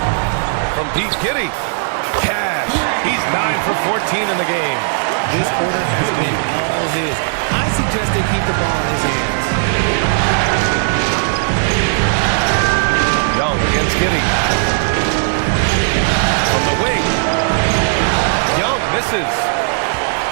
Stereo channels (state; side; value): silent; left; digital silence